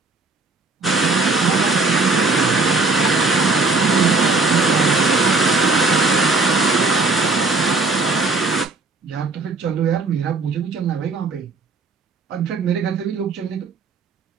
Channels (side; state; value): left; quieter; 3.7 dB